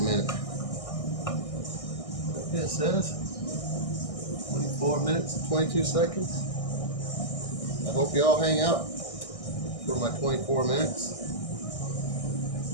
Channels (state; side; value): late; right; 1.6 ms